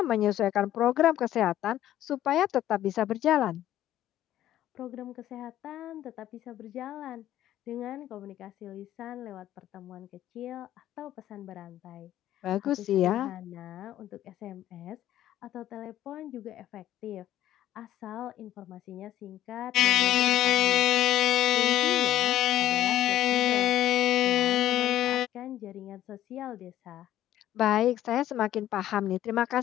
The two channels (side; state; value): right; quieter; 12.7 dB